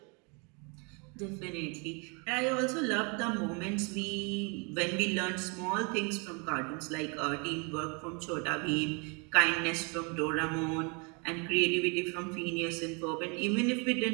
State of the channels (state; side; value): quieter; left; 32.9 dB